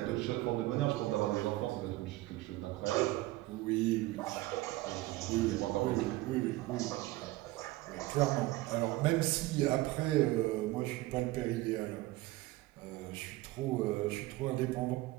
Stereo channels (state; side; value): quieter; left; 18.6 dB